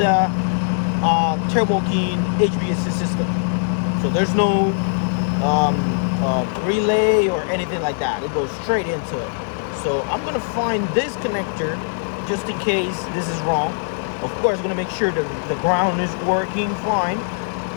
Turbo King HVAC system. So there's no relay or anything like that. It goes straight into it. So I'm gonna find this connector just in case this is wrong. Of course, I'm gonna make sure that the ground is working fine,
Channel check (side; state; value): right; silent; 65 dB below the other